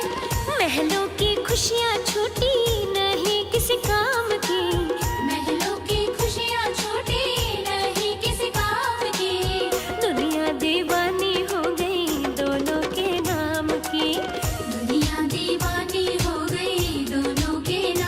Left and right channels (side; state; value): both; identical; correlation 1.00